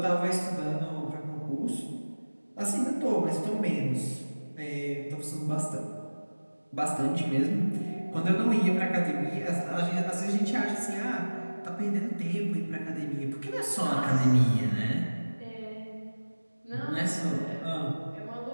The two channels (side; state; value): both; inverted; correlation -1.00